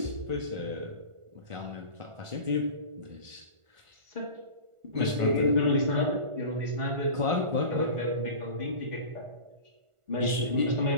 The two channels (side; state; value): left; late; 1.4 ms